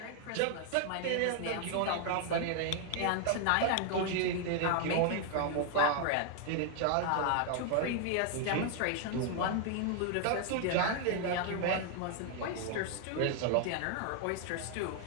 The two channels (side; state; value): both; different; correlation 0.00